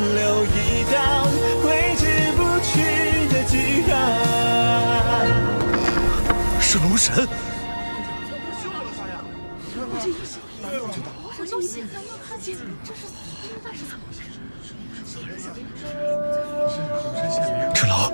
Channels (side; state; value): both; inverted; correlation -1.00